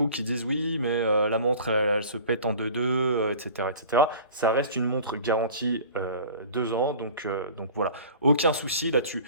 qui disent oui, mais la montre elle se pète en 2-2, etc., etc. Ça reste une montre garantie 2 ans, donc voilà, aucun souci là-dessus.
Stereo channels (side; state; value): both; inverted; correlation -0.42